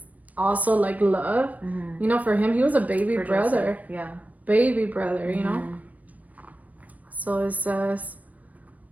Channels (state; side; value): late; left; 0.072 ms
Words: also like love, for him, he was a baby brother. Yeah. Baby brother, So it says,